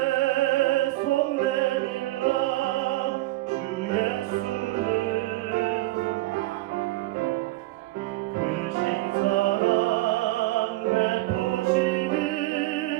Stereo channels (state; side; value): quieter; left; 18.7 dB